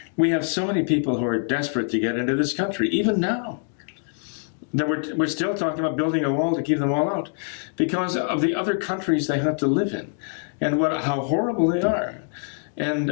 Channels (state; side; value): silent; right; 58 dB below the other